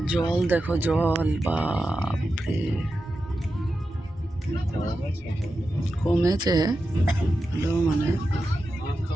জল দেখো, জল বাপরে কমেছে মানে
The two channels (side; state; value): both; normal; correlation 0.90